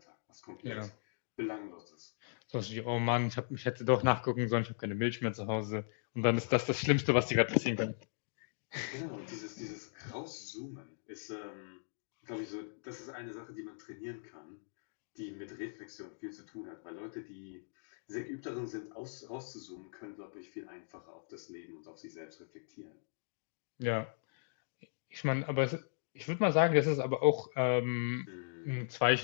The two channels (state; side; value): silent; right; digital silence